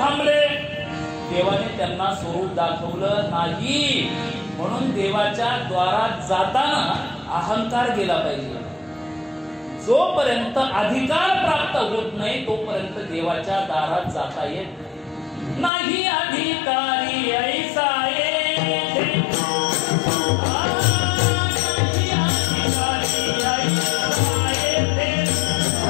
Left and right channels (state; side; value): drops out; right; at 15.7 s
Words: देवाने त्यांना स्वरूप दाखवलं नाही. म्हणून देवाच्या द्वारात जाताना अहंकार गेला पाहिजे. जोपर्यंत अधिकार प्राप्त होत नाही तोपर्यंत देवाच्या दारात जाता येत नाही. अधिकारी ऐसा येते